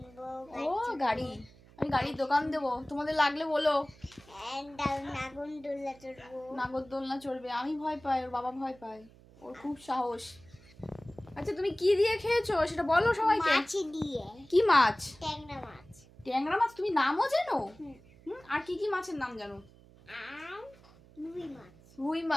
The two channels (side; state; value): right; noise; hum, 24 dB below the sound